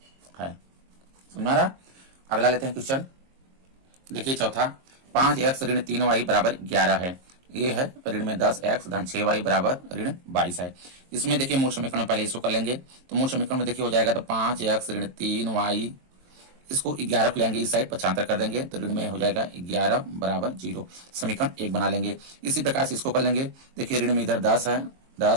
है। समझ में आ रहा? अगला लेते हैं क्वेश्चन। देखिए चौथा, 5x ऋण 3y बराबर 11 है। ये है ऋण में 10x धन 6y बराबर ऋण 22 है। इसमें देखिए मूल समीकरण में पहले इसको कर लेंगे, तो मूल समीकरण में देखिए हो जाएगा तो 5x ऋण 3y, इसको 11 को लेंगे इस साइड 75 कर देंगे तो ऋण में हो जाएगा 11 बराबर 0। समीकरण 1 बना लेंगे। इसी प्रकार से इसको कर लेंगे। देखिए ऋण में इधर 10 है,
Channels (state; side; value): late; left; 22 ms